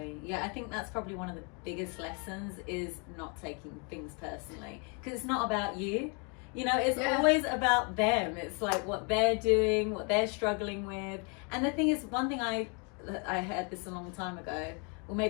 yeah, I think that's probably one of the biggest lessons, is not taking things personally, because it's not about you, you know, it's always about them. It's like what they're doing, what they're struggling with. And the thing is, one thing I heard this a long time ago, or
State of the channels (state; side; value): quieter; right; 35.4 dB